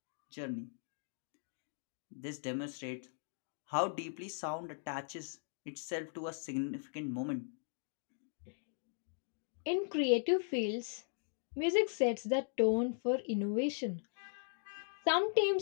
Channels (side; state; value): right; silent; digital silence